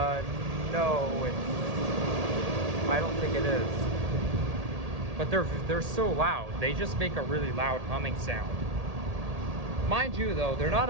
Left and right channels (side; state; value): left; late; 1.8 ms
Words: No, I don't think it is. But they're so loud. They just make a really loud humming sound. Mind you, though, they're